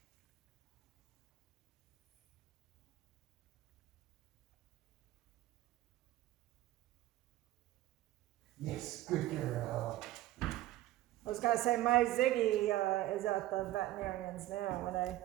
Yes, good girl. I was gonna say, my Ziggy is at the veterinarian's now, and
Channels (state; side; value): quieter; left; 15.3 dB